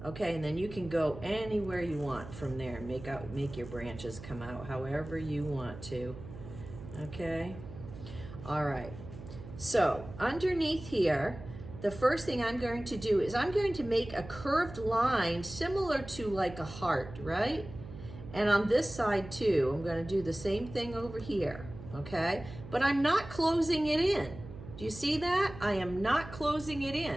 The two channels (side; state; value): right; noise; hum, 13 dB below the sound